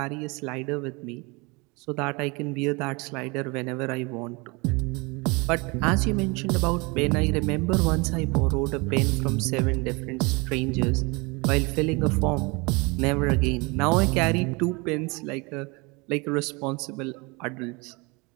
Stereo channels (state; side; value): quieter; left; 27.5 dB